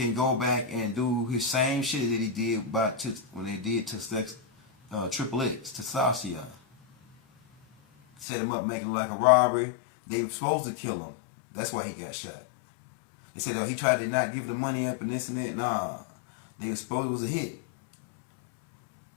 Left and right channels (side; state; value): right; drops out; at 8.2 s